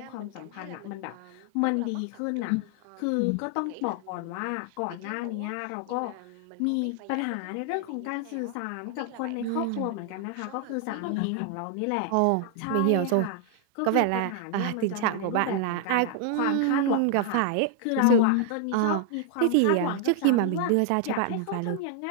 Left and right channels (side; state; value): both; different; correlation 0.00